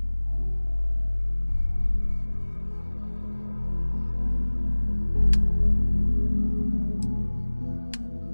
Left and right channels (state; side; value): inverted; both; correlation -1.00